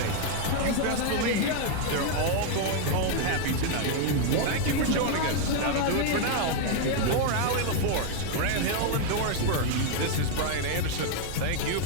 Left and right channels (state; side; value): different; both; correlation 0.00